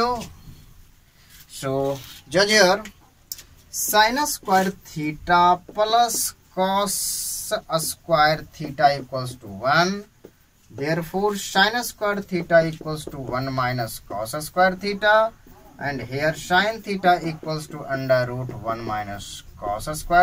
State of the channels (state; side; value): identical; both; correlation 1.00